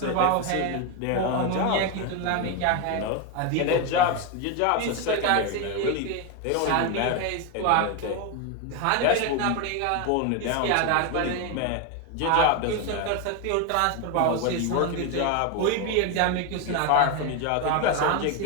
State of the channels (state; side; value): different; both; correlation 0.02